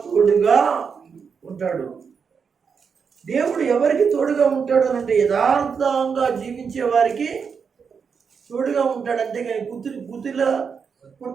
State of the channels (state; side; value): quieter; left; 6.1 dB